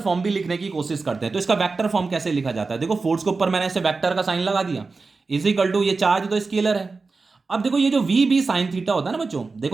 भी लिखने की कोशिश करते हैं। तो इसका वेक्टर फॉर्म कैसे लिखा जाता है, देखो फोर्स के ऊपर मैंने ऐसे वेक्टर का साइन लगा दिया, इज इक्वल टू, ये चार्ज तो स्केलर है। अब देखो ये जो वी बी साइन थीटा होता है ना बच्चों,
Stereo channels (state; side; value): quieter; left; 4.1 dB